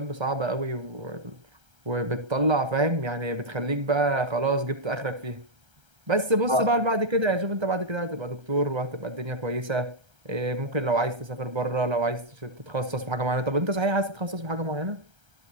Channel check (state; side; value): late; left; 1.3 ms